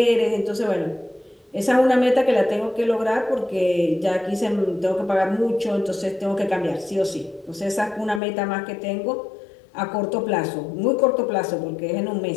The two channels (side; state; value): right; drops out; at 8.2 s